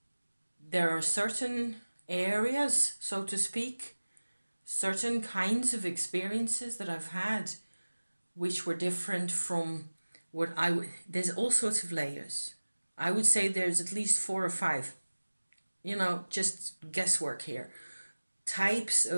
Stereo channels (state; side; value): inverted; both; correlation -1.00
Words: there are certain areas, so to speak, certain kinds of experiences that I've had which were different from what there's all sorts of layers. I would say there's at least 4 or 5, just guesswork here. Types